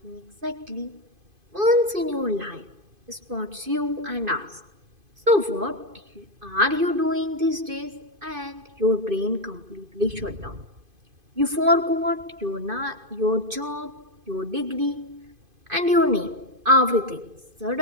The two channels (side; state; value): left; late; 2.5 ms